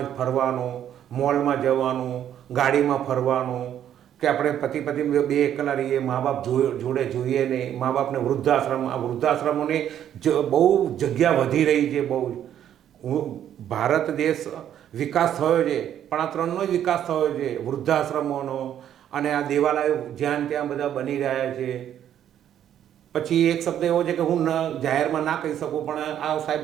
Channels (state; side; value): quieter; left; 10.3 dB